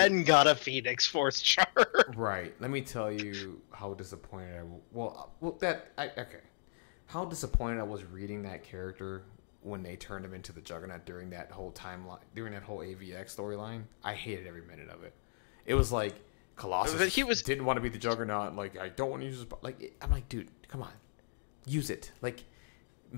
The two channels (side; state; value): right; silent; digital silence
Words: got a Phoenix Force shard. Right. Let me tell you how disappointed how disappointed I was reading that character when they turned him into the Juggernaut during that whole timeline, during that whole AVX storyline. I hated every minute of it. It was like Colossus didn't want to be the Juggernaut. Like, I don't want to use his... Like, I'm like, dude, come on. Use it. Like...